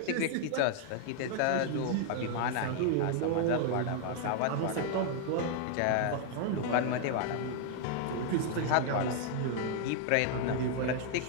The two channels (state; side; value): different; both; correlation 0.00